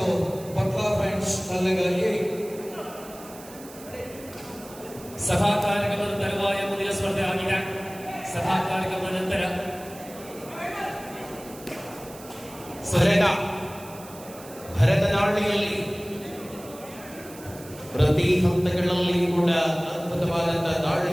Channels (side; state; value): right; noise; hiss, 18 dB below the sound